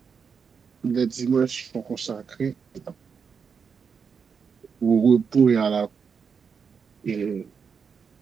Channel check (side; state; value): left; quieter; 6.2 dB